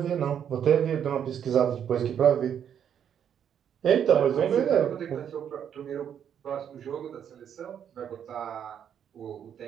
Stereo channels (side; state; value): left; quieter; 8.8 dB